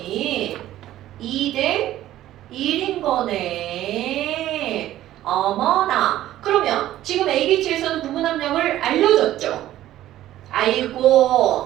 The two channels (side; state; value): left; quieter; 13.7 dB